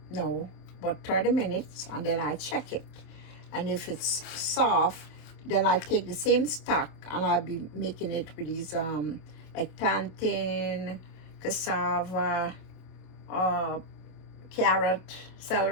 no, about 30 minutes, and then I check it. And if it's soft, then I take the same stock and I'll be making it with these like plantain, cassava, carrot,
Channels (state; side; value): late; right; 27 ms